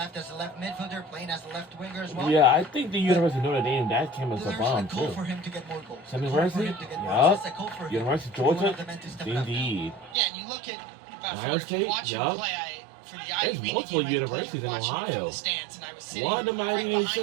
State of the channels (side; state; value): left; drops out; at 10.2 s